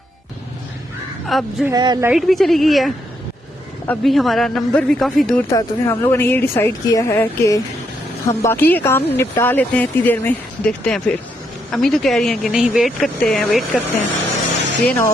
अब जो है लाइट भी चली गई है। अभी हमारा नंबर भी काफ़ी दूर था, तो फिर हम लोगों ने ये डिसाइड किया है कि हम बाकी के काम निपटा लेते हैं इतनी देर में, देखते हैं फिर। अम्मी तो कह रही हैं कि नहीं वेट करते हैं, ये ना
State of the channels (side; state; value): both; normal; correlation 0.77